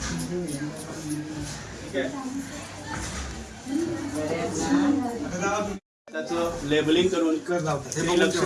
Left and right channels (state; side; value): identical; both; correlation 1.00